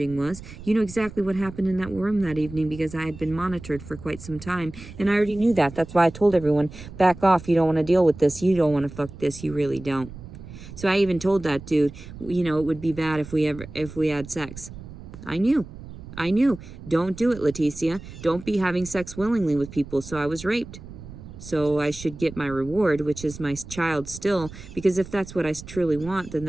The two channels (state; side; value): noise; right; rumble, 15 dB below the sound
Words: was. You knew exactly what happened in that room that evening because I had been monitored for quite some time. And I already knew that. That's why I told everyone, back off. You don't want to deal with this. You don't want to fuck this. You really don't. So I even told that dude, it would be bad if we had sex. I knew. Don't do it, Leticia. Don't be having sex willingly with people. So I was raped. So I should get my reward, which is my child still. Because if that's what I truly want, then